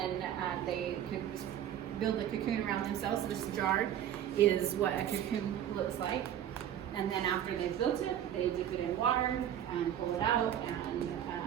they build a cocoon around themselves. So this jar is what a cocoon looks like. And then after they've built it, they dip it in water and pull it out and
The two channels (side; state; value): left; quieter; 10.6 dB